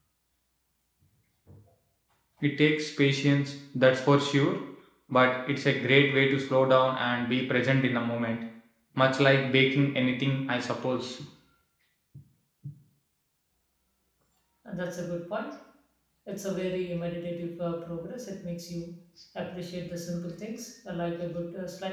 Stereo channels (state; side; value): identical; both; correlation 1.00